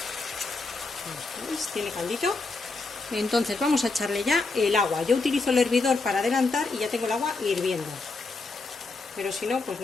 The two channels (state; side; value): quieter; right; 3.7 dB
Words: ¿Veis? Tiene caldito. Entonces vamos a echarle ya el agua. Yo utilizo el hervidor para adelantar y ya tengo el agua hirviendo. Pero si no, pues